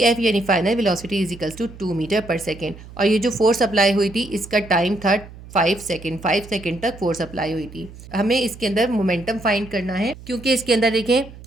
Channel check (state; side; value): noise; right; hum, 17 dB below the sound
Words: F यानी final velocity is equals to 2 metre per second, और ये जो फोर्स अप्लाई हुई थी इसका टाइम था 5 सेकेंड, 5 सेकेंड तक फोर्स अप्लाई हुई थी। हमें इसके अंदर मोमेंटम फाइंड करना है, क्योंकि इसके अंदर देखें